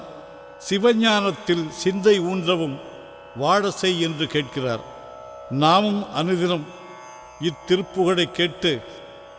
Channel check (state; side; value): identical; both; correlation 1.00